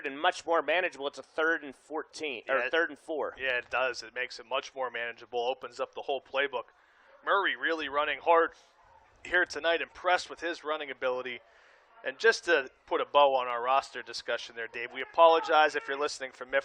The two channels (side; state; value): both; identical; correlation 1.00